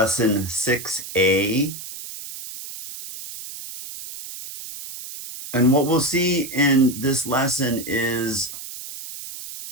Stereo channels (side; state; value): right; noise; hiss, 11 dB below the sound